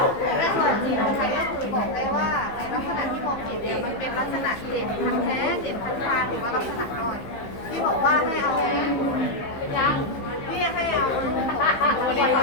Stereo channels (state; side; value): late; right; 15 ms